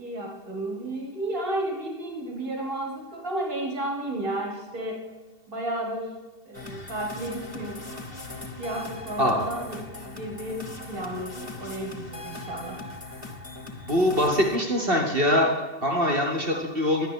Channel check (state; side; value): late; left; 2.7 ms